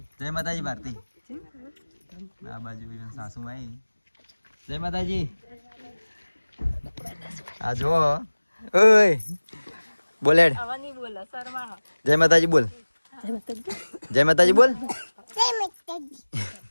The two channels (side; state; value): both; inverted; correlation -1.00